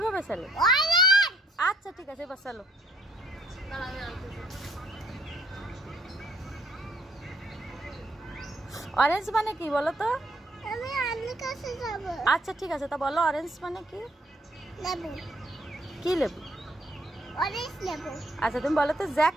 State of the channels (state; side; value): normal; both; correlation 0.67